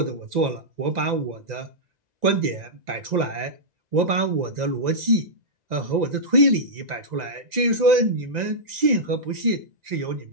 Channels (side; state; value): left; late; 1.9 ms